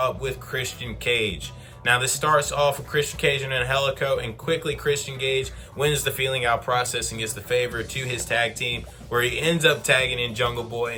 with Christian Cage. Now this starts off with Christian Cage and Helico, and quickly Christian Cage wins the feeling out process and gets the favor to his tag team, where he ends up tagging in Jungle Boy,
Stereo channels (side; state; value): both; identical; correlation 1.00